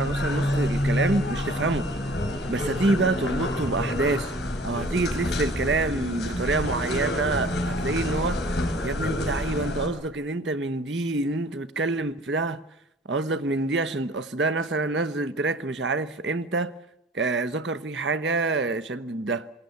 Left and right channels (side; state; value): both; normal; correlation 0.48